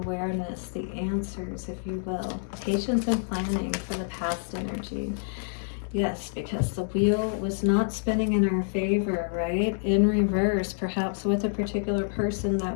the answers, if you will. Patience and planning for the past energy. Yes, because the wheel was not spinning in our favor, right? In reverse, perhaps with a particular person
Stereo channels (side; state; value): right; silent; digital silence